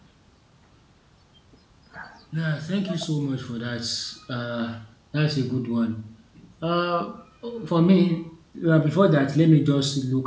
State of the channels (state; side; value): identical; both; correlation 1.00